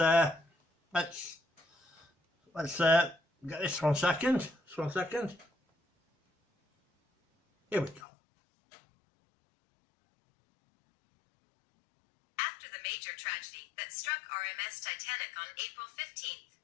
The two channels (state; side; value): drops out; right; at 8.0 s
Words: get this 1 second. Just 1 second. Here we go. After the major tragedy that struck RMS Titanic on April 15th,